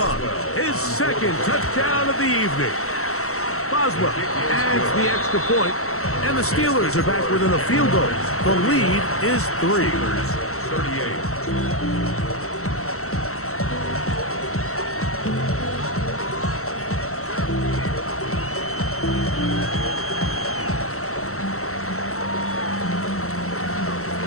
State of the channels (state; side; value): late; right; 0.64 ms